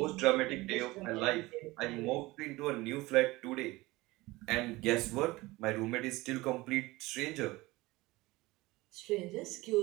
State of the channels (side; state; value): left; quieter; 20.6 dB